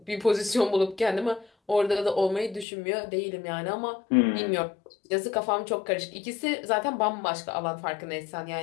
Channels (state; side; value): drops out; right; at 2.7 s